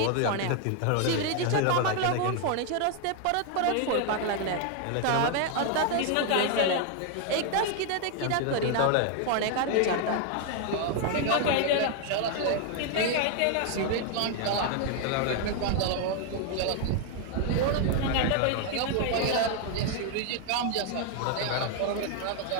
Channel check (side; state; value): both; different; correlation 0.00